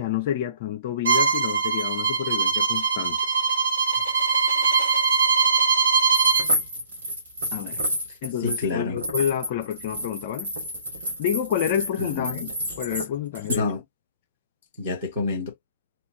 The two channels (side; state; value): both; inverted; correlation -0.58